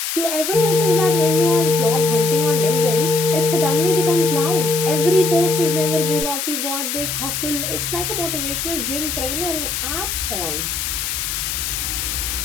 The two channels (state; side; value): noise; left; hiss, 3 dB below the sound